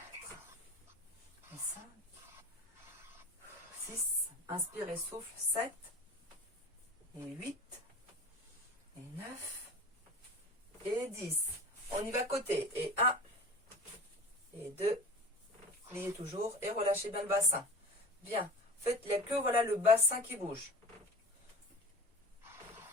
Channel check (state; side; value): normal; both; correlation 0.38